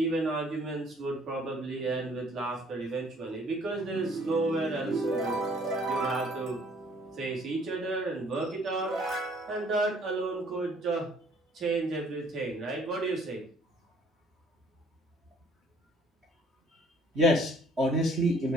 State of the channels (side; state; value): both; normal; correlation 0.59